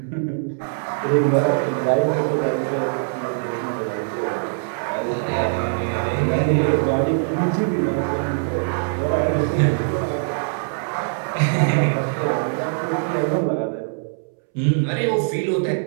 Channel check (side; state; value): left; silent; 64 dB below the other